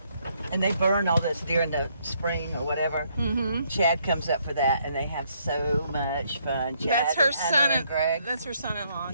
And they burn all this during the spring or whatever. Chad comes up for that, and they have so much fun. Chad That's her and Hunter son. and Greg. That's her son-in-law.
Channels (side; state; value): both; inverted; correlation -0.71